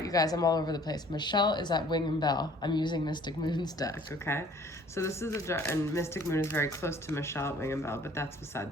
you guys, I'm all over the place. Michelle is at Wing and Bell. I'm using Mystic Moon's deck, okay? So this is and Mystic Moon is very close to Michelle at Wing and Bell, but that's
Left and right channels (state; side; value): normal; both; correlation 0.55